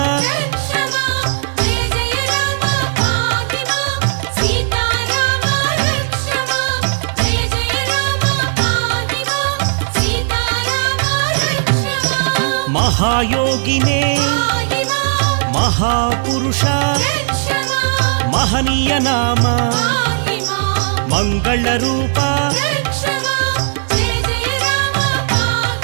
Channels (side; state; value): left; silent; digital silence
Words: మహాయోగినే మహాపురుష మహనీయ నామ మంగళ రూప